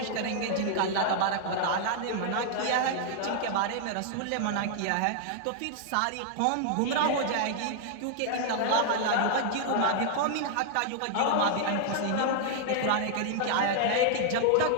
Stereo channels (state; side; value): different; both; correlation 0.00